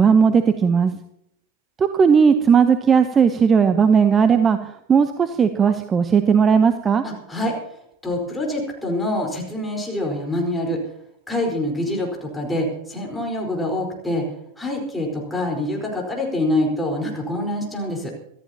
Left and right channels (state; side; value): quieter; left; 4.6 dB